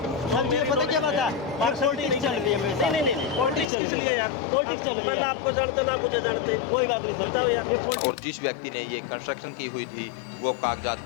सर ये पता क्या बात है, पॉलिटिक्स चल रही है मेरे साथ। नहीं पॉलिटिक्स किस लिए यार? पॉलिटिक्स चल रही है। मैं आपको जानते ना मुझे जानते, कोई बात नहीं, बताओ यार। और जिस व्यक्ति ने ये कंस्ट्रक्शन की हुई थी वो कागजात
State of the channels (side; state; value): right; drops out; at 3.7 s